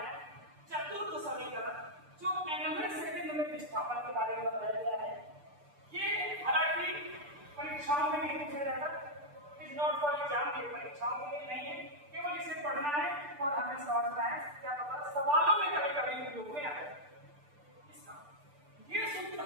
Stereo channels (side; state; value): left; late; 6.8 ms